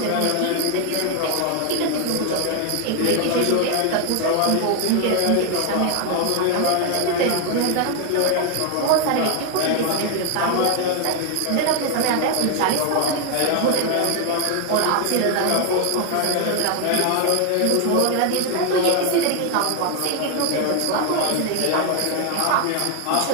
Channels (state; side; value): different; both; correlation 0.01